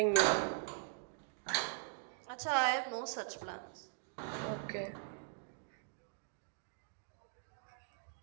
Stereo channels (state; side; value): silent; left; digital silence